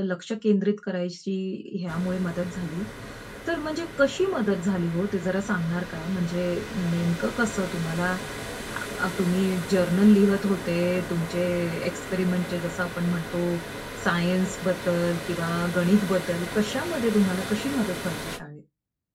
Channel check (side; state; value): both; identical; correlation 1.00